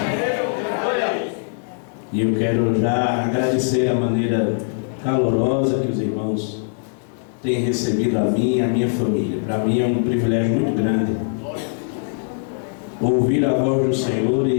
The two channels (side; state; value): right; silent; digital silence